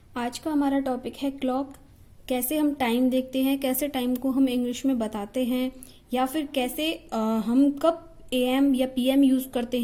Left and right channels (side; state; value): both; identical; correlation 1.00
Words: आज का हमारा टॉपिक है क्लॉक। कैसे हम टाइम देखते हैं, कैसे टाइम को हम इंग्लिश में बताते हैं, या फिर कैसे हम कब एएम या पीएम यूज़ करते